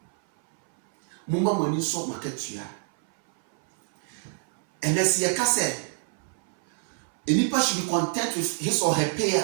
and as ye ka say enipa should be content with his or her payer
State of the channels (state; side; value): silent; left; 61 dB below the other